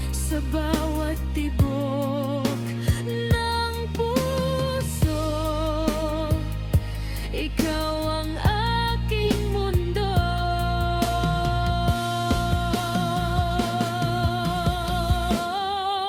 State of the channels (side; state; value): both; identical; correlation 1.00